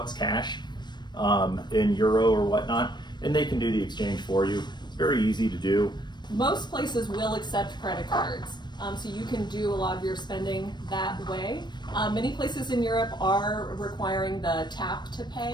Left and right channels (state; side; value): late; right; 0.21 ms